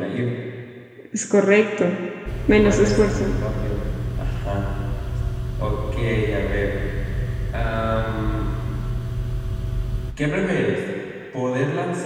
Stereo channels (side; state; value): both; identical; correlation 1.00